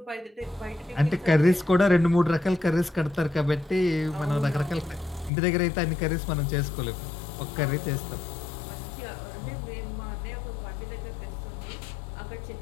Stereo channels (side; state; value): right; drops out; at 5.3 s